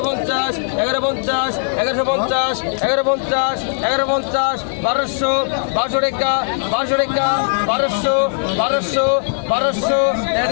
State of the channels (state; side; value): silent; right; digital silence